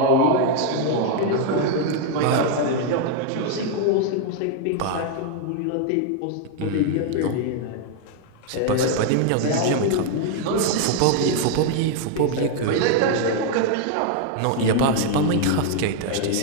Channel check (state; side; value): different; both; correlation 0.00